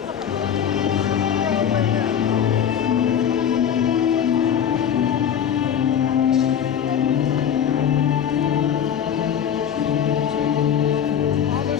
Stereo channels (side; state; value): right; quieter; 8.9 dB